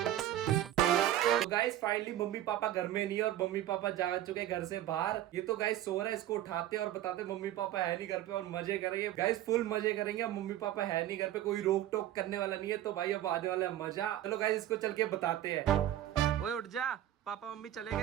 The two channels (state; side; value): quieter; left; 12.9 dB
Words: तो गाइस फाइनली मम्मी पापा घर में नहीं है और मम्मी पापा जा चुके घर से बाहर। ये तो गाइस सो रहा है, इसको उठाते और बताते मम्मी पापा है नहीं घर पे और मजे करेंगे गाइस, फुल मजे करेंगे। अब मम्मी पापा है नहीं घर पे, कोई रोक टोक करने वाला नहीं है, तो भाई अब आने वाला है मजा। चलो गाइस इसको चल के बताते हैं। ओए उठ जा, पापा मम्मी चले